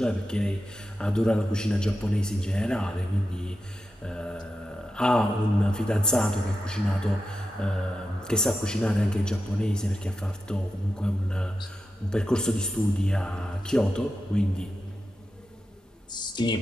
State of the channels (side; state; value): both; normal; correlation 0.90